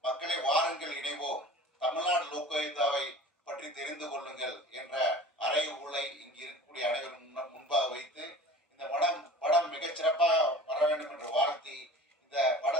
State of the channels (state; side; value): normal; both; correlation 0.40